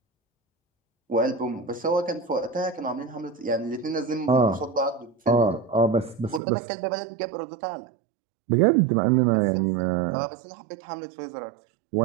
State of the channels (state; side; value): drops out; left; at 6.4 s